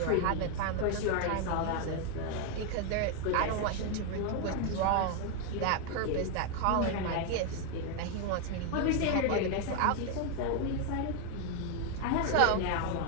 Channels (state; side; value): different; both; correlation 0.01